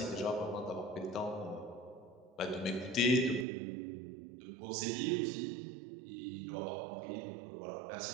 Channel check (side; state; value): left; drops out; at 3.5 s